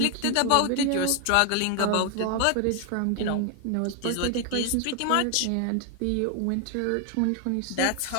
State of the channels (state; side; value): different; both; correlation 0.00